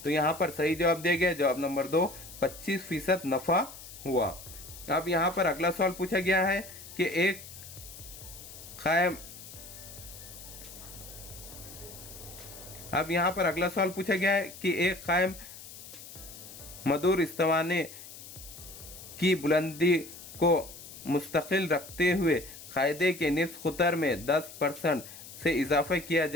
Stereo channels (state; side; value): noise; left; hiss, 15 dB below the sound